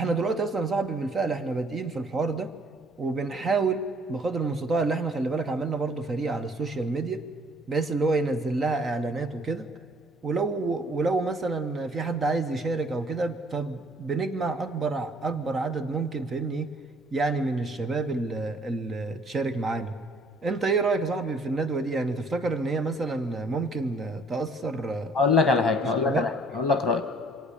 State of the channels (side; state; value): both; normal; correlation 0.59